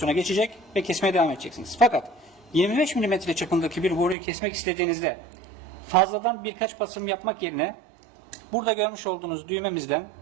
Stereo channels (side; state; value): left; drops out; at 4.2 s